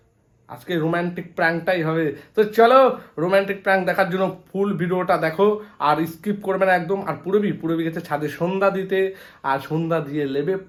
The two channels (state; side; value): identical; both; correlation 1.00